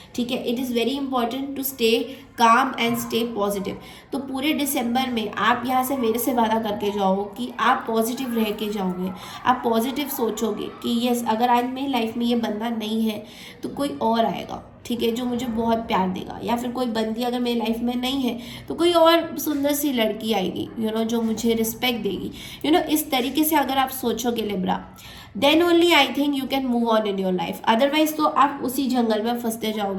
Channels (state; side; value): identical; both; correlation 1.00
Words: ठीक है, it is very important to stay calm and stay positive. तो पूरे दिसंबर में आप यहाँ से मेरे से वादा करके जाओ कि आप पॉजिटिव रह के जाओगे, आप पॉजिटिव सोचोगे कि यस, अगर आज मेरी लाइफ में ये बंदा नहीं है तो कोई और आएगा, ठीक है, जो मुझे बहुत प्यार देगा, या फिर कोई बंदी अगर मेरी लाइफ में नहीं है तो कोई और सुंदर सी लड़की आएगी, यू नो, जो मुझे रिस्पेक्ट देगी, यू नो। इस तरीके से अगर आप सोचोगे Libra, then only I think you can move on in your life. Otherwise तो आप उसी जंगल में फंसते